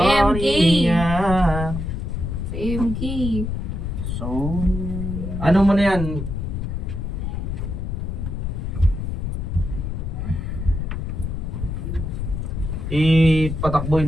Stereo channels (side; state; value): left; noise; rumble, 3 dB below the sound